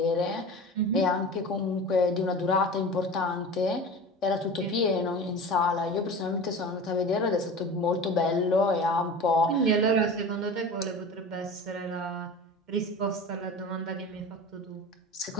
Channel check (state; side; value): normal; both; correlation 0.34